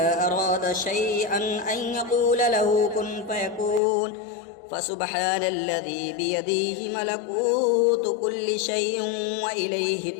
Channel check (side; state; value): right; drops out; at 3.8 s